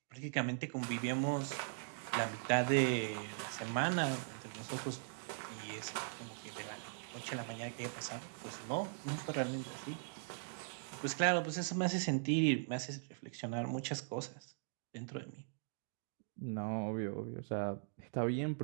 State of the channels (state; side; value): silent; left; digital silence